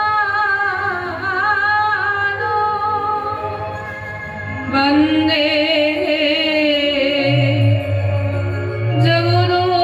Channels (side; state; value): both; identical; correlation 1.00